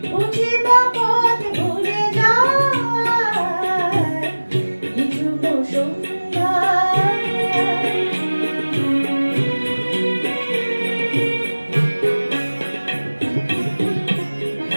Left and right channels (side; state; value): both; inverted; correlation -1.00